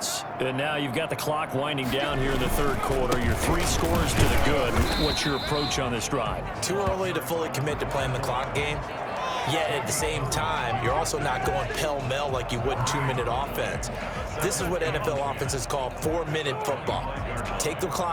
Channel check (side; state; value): both; identical; correlation 1.00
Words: And now you've got the clock winding down here in the 3rd quarter. Your 3 scores to the good. What's your approach on this drive? Too early to fully commit to playing the clock game. Yet at the same time, you're also not going pell-mell like you would in 2-minute offense. This is what NFL offenses call 4-minute football. Take the